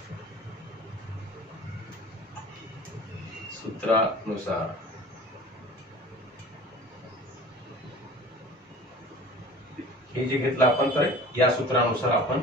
सूत्रानुसार हे जे घेतलं आपण तर या सूत्रानुसार आपण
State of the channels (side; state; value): both; normal; correlation 0.42